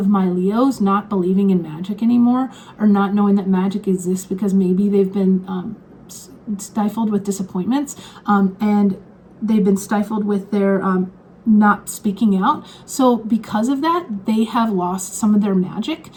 my Leos not believing in magic anymore, or not knowing that magic exists because maybe they've been stifled with disappointments, and they've been stifled with their not speaking out. So because of that, they have lost some of their magic,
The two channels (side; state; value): both; identical; correlation 1.00